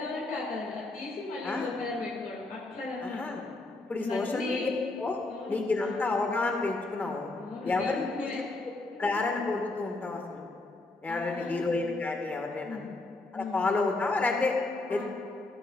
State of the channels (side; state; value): right; quieter; 3.0 dB